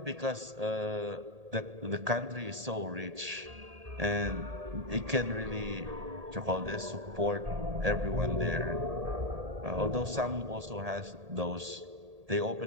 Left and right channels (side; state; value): left; late; 1.8 ms